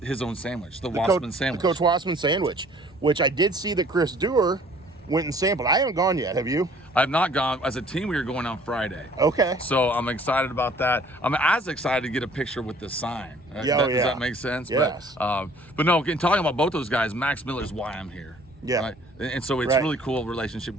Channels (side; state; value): both; normal; correlation 0.55